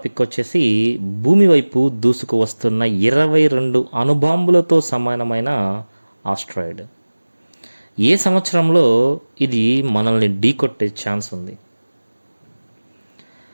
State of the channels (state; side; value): inverted; both; correlation -1.00